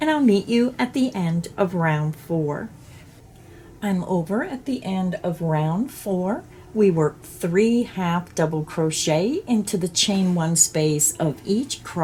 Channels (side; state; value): both; identical; correlation 1.00